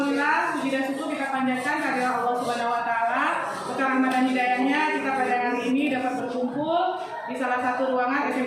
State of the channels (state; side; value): identical; both; correlation 1.00